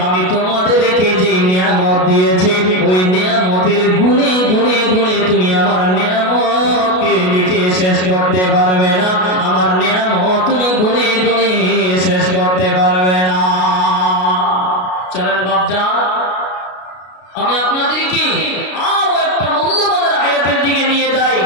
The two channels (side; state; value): right; late; 33 ms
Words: আমি তোমাদেরকে যে নিয়ামত দিয়েছি ওই নিয়ামতের গুণে গুণে গুণে তুমি আমার নিয়ামতকে লিখে শেষ করতে পারবে না। আমার নিয়ামত তুমি গুণে গুণে শেষ করতে পারবে না। চলেন বাপজান, আমি আপনাদেরকে আরো একটা মূল্যবান আয়াতের দিকে নিয়ে যাই।